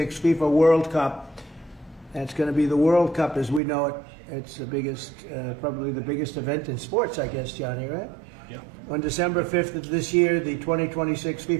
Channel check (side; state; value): left; drops out; at 3.6 s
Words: FIFA World Cup. And it's going to be the World Cup as we know it. It's the biggest, probably the biggest event in sports, I guess, Johnny, right? Yeah. On December 5th of this year, the 2026